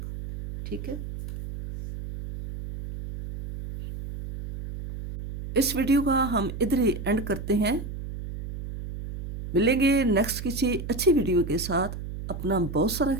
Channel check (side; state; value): right; noise; hum, 8 dB below the sound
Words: ठीक है। इस वीडियो का हम इधर ही एंड करते हैं। मिलेंगे नेक्स्ट किसी अच्छी वीडियो के साथ। अपना बहुत सारा